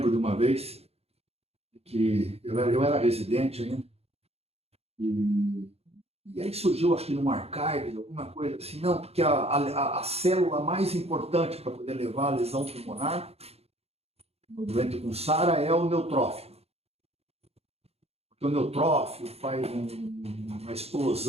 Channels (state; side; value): late; left; 0.30 ms